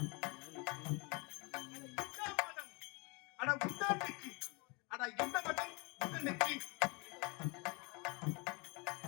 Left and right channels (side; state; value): right; quieter; 29.6 dB